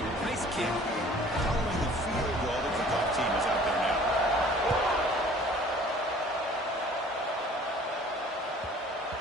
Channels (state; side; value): normal; both; correlation 0.51